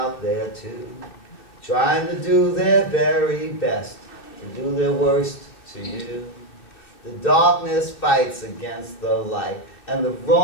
there too, trying to do their very best to do their worst to you. The darkness fights against the light, and the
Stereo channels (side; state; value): right; late; 2.7 ms